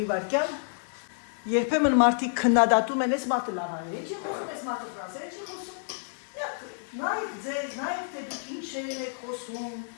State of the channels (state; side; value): silent; right; digital silence